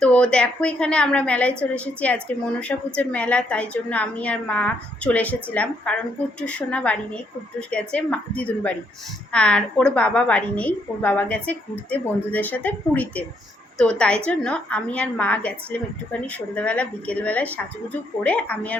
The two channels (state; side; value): normal; both; correlation 0.73